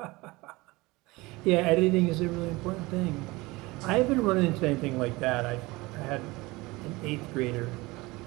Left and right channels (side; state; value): left; quieter; 22.1 dB